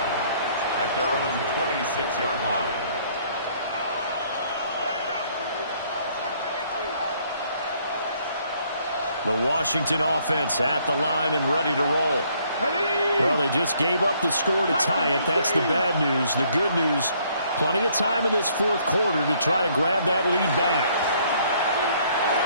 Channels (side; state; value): both; inverted; correlation -0.65